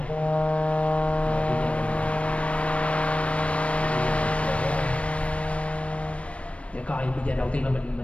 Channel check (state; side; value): late; right; 0.062 ms